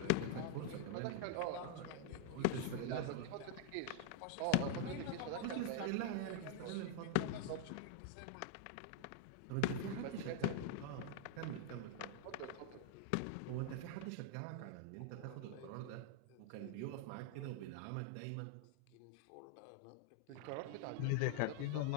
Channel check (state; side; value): different; both; correlation 0.00